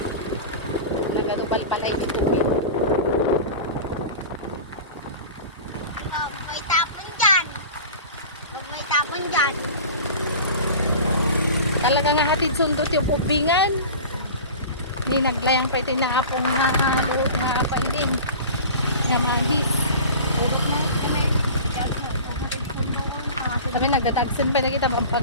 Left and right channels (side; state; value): both; inverted; correlation -0.35